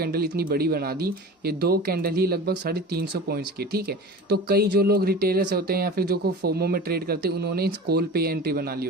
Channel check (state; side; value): normal; both; correlation 0.35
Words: इतनी बड़ी बना दी। ये 2 कैंडल ही लगभग 350 पॉइंट्स की। ठीक है, तो कई जो लोग रिटेलर्स होते हैं या फिर जो को फोमो में ट्रेड करते हैं, उन्होंने इस कॉल पे एंट्री बना ली